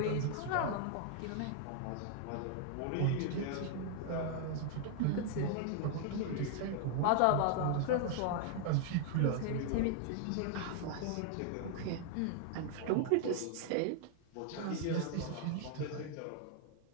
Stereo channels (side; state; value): both; different; correlation 0.00